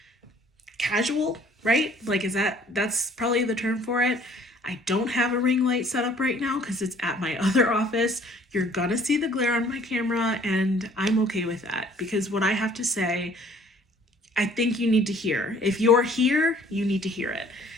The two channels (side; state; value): both; normal; correlation 0.56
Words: casual, right? Like, that's probably the term for it. I don't have a ring light set up right now because it's at my other office. You're gonna see the glare on my camera, and I'm okay with that because what I have to say, I think you need to hear. If you're here, you need to hear it.